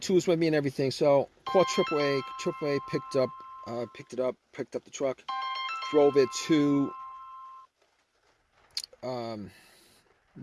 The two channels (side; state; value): both; identical; correlation 1.00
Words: with me and everything. So called AAA. AAA picked up the truck, drove it to